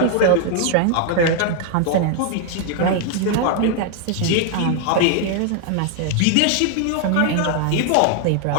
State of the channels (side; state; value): both; different; correlation 0.00